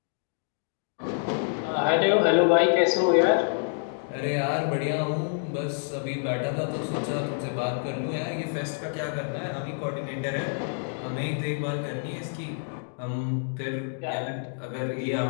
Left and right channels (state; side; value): silent; right; digital silence